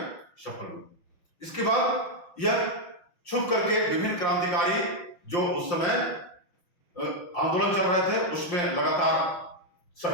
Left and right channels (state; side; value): late; right; 5.7 ms